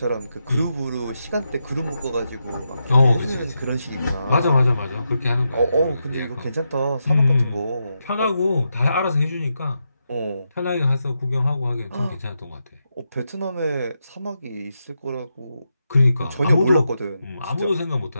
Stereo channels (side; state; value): both; inverted; correlation -0.85